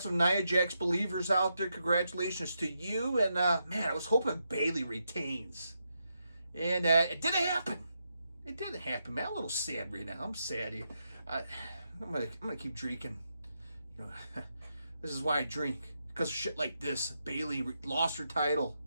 some Nia Jax believers out there. Congratulations to you. And, man, I was hoping Bayley retains. And it didn't happen. It didn't happen, man. I'm a little sad right now. I'm sad. I'm gonna keep drinking. This is why I drink. Because of shit like this. Bayley lost her title.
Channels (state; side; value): inverted; both; correlation -0.84